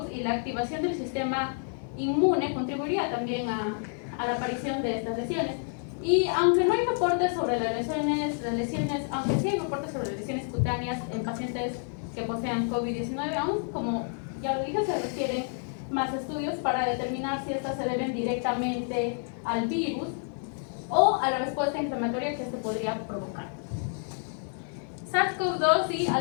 y la activación del sistema inmune contribuiría también a la aparición de estas lesiones. Y aunque no hay reportes sobre las lesiones, aunque sí hay reportes sobre lesiones cutáneas en pacientes que posean COVID-19, aún como ya lo dije, se requieren más estudios para determinar si estas se deben directamente al virus o a la respuesta inflamatoria que este podría provocar. SARS-CoV-2 y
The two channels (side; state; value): right; silent; 55 dB below the other